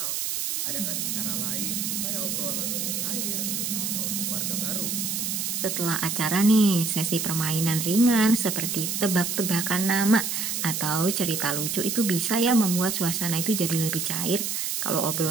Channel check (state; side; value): noise; right; hiss, 1 dB below the sound